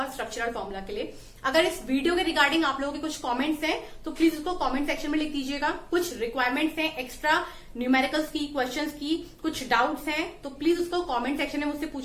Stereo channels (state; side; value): identical; both; correlation 1.00